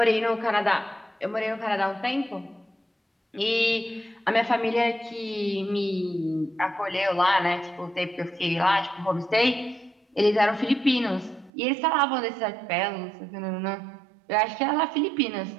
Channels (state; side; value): drops out; left; at 11.5 s